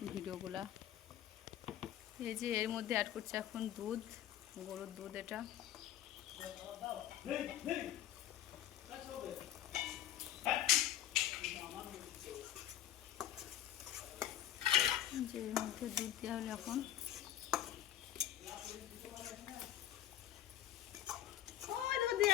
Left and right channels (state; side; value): quieter; right; 12.3 dB